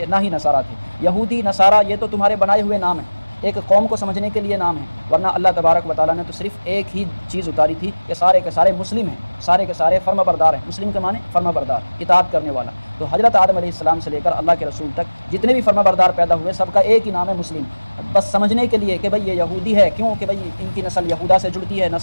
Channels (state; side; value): inverted; both; correlation -1.00